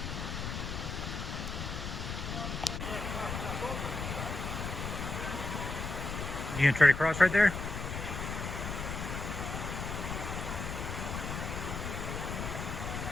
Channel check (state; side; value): noise; left; rumble, 4 dB below the sound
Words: You gonna try to cross right there?